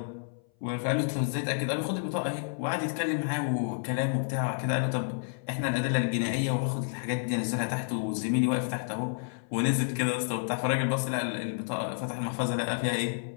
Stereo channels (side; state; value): right; silent; 58 dB below the other